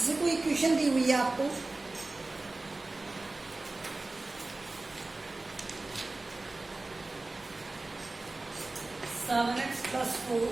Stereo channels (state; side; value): quieter; left; 3.1 dB